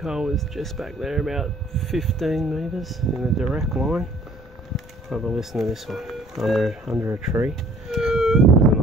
hole is just back there, about 15 metres in a direct line. Have a listen to this one, under a tree. There's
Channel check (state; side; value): normal; both; correlation 0.56